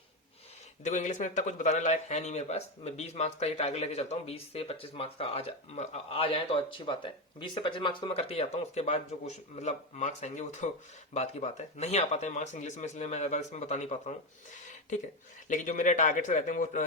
देखो इंग्लिश में इतना कुछ बताने लायक है नहीं मेरे पास, मैं 20 मार्क्स का ही टारगेट लेके चलता हूँ। 20 से 25 मार्क्स का आ जाए तो अच्छी बात है। 20 से 25 मार्क्स तो मैं करके ही जाता हूँ, उसके बाद जो कुछ मतलब मार्क्स आएंगे वो तो बात की बात है। नहीं आ पाते हैं मार्क्स इंग्लिश में, इसलिए मैं ज्यादा इसमें बता नहीं पाता हूँ, ठीक है। लेकिन जो मेरे टारगेट्स रहते हैं वो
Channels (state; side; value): normal; both; correlation 0.12